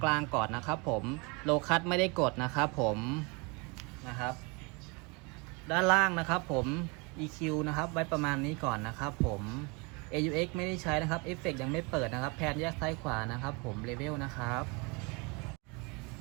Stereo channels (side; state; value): left; quieter; 29.7 dB